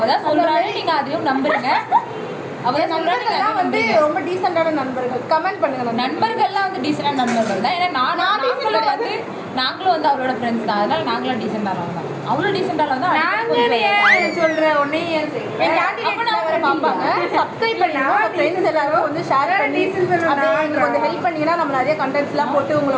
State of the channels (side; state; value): both; identical; correlation 1.00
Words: தான் சொல்கிறாங்க, நீங்கள் அதையும் நம்புறீங்க. அவள் நண்பர்கள்லாம் வந்து ரொம்ப டீசெண்டான நண்பர்கள். கமெண்ட் பண்ணுங்க. நண்பர்கள்லாம் வந்து டீசெண்டான நண்பர்கள் தான். ஏன்னா நாங்களும் வந்து அவளோட ஃப்ரெண்ட்ஸ் தான், அதனால நாங்களும் டீசெண்டானவங்க தான். அவ்வளோ டீசெண்டாக வந்து சொல்கிறேன் ஒன்னே பார்ப்பாங்க. சப்ஸ்கிரைப் பண்ணி ஃப்ரெண்ட்ஸ் எல்லாரும் வந்து ஷேர் பண்ணி அப்படியே கொஞ்சம் ஹெல்ப் பண்ணீங்கன்னா நம்ம நிறைய கண்டென்ட்ஸ்லாம் போட்டு